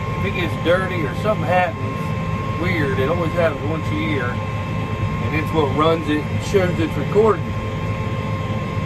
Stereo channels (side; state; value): both; identical; correlation 1.00